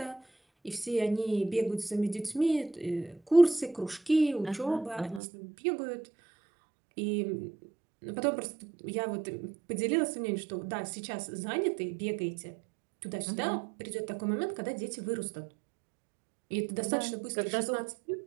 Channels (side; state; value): left; drops out; at 5.2 s